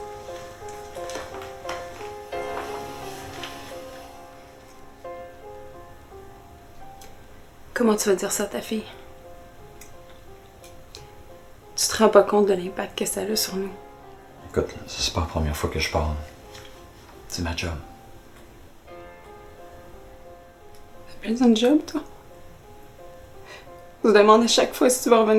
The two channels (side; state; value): both; identical; correlation 1.00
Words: Comment tu vas dire ça à ta fille? Tu te rends pas compte de l'impact que ça a sur nous? Écoute, c'est pas la première fois que je parle. C'est ma job. T'as besoin de job, toi? On se demande à chaque fois si tu vas